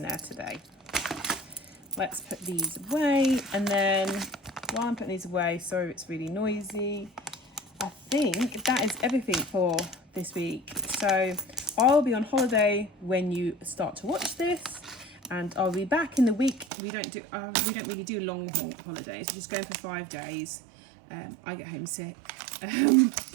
there today. Let's put these away, and then while I'm putting these away, sorry it's really noisy, I think that is everything for this week. So I'll be on holiday when you start to watch this, and I'll be back in the week. We don't really do long holidays. We're just going for 5 days. I get homesick,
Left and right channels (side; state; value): left; drops out; at 16.7 s